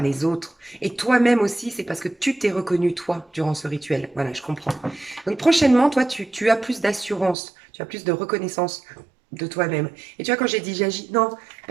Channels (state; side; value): drops out; left; at 7.4 s